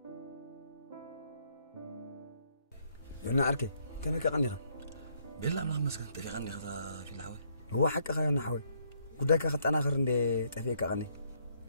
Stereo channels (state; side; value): inverted; both; correlation -0.70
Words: أنا أركي كم هيك غنيها بالله ما مسكت تغني هذا في الحوي هو حق خيرنا حوي قداك أخذت أنا آخر اللي تفيك أغني